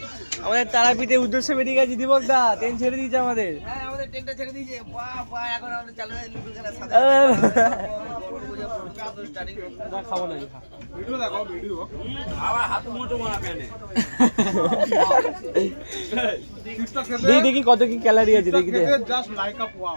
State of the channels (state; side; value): inverted; both; correlation -1.00